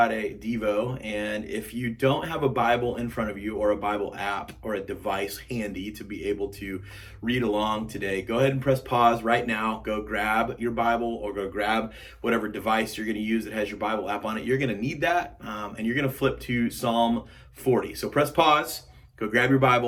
Devo. And if you don't have a Bible in front of you or a Bible app or a device handy to be able to read along today, go ahead and press pause right now. Go grab your Bible or go grab whatever device you're going to use that has your Bible app on it. You're going to need that, and you're going to flip to Psalm 40. So press pause, go grab your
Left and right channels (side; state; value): both; identical; correlation 1.00